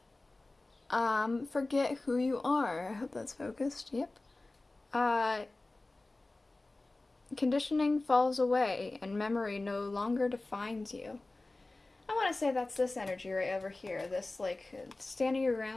forget who you are. I hope that's focused. Yep. Conditioning falls away and memory no longer defines you. I want to say that's this energy right over here. This, like, standing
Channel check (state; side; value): quieter; right; 3.0 dB